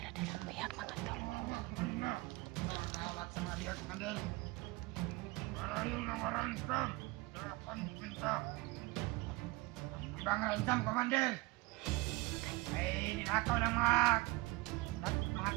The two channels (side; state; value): left; quieter; 22.6 dB